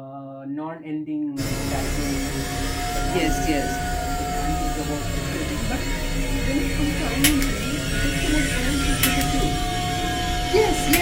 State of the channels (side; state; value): both; identical; correlation 1.00